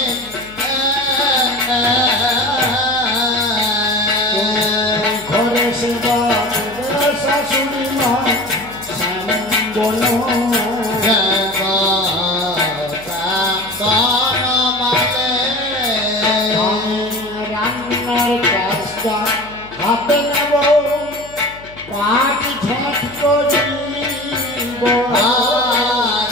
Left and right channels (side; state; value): left; noise; hum, 20 dB below the sound